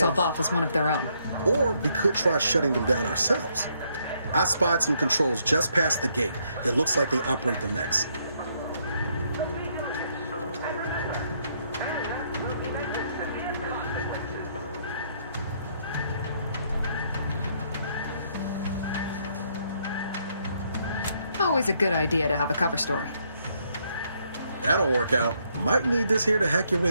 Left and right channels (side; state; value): both; inverted; correlation -0.72